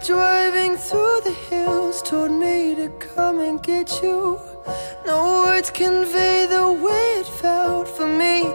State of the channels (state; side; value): inverted; both; correlation -1.00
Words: driving through the hills, told me to come and get you. No words convey the way it felt for me